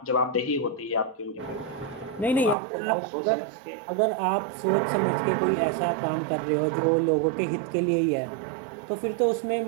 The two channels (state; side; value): drops out; left; at 2.6 s